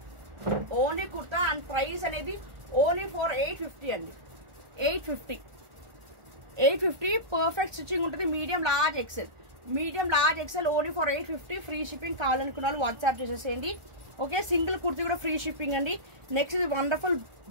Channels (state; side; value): late; left; 1.4 ms